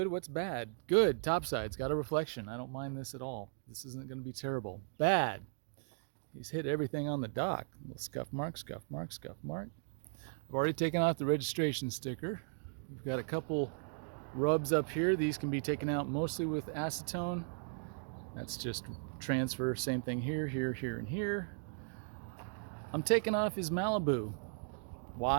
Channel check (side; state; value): left; silent; digital silence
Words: what's bad. Good, topside's got a reflection. I don't mind this at all. This isn't going to be terrible. Bad. He's hit everything on the dock. Little scuff mark, scuff mark, scuff mark. I've already taken off the registration sticker. We've got a couple rubs up here. These can be taken out mostly with acetone. That's just transfer. Same thing here, here, here, and here. I'm taking off his Malibu.